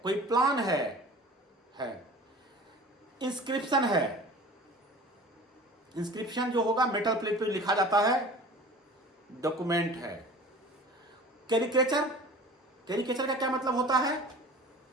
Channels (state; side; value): normal; both; correlation 0.41